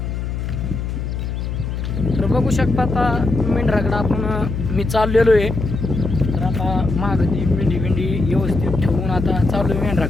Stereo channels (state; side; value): noise; left; hum, 4 dB below the sound